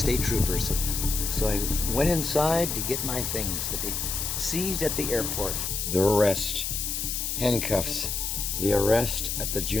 Troopers. So I went inside to get my things that they seized at the airport. The arrest. Handcuffs. The arrest at the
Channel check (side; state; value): left; noise; hiss, 2 dB below the sound